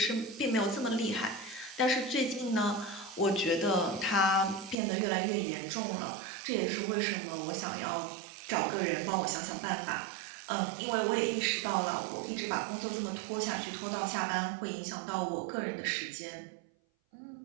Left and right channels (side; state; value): left; drops out; at 4.8 s